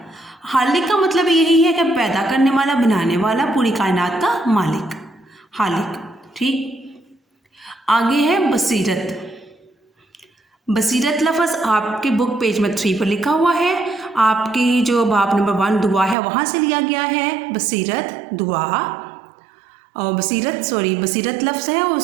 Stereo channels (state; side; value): drops out; left; at 16.2 s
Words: हालिक का मतलब यही है कि पैदा करने वाला, बनाने वाला, पूरी कायनात का मालिक, हालिक। ठीक, आगे है बसीरत। बसीरत लफ्ज़ आपके बुक पेज में 3 पर लिखा हुआ है। आपकी जो बाब नंबर 1 दुआ है वहाँ से लिया गया है बसीरत दुआ। और बसीरत लफ्ज़ है,